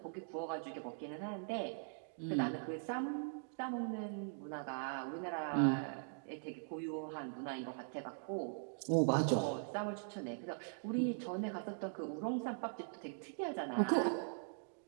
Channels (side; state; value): left; silent; digital silence